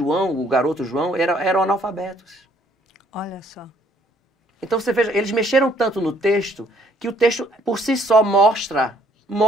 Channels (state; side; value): normal; both; correlation 0.64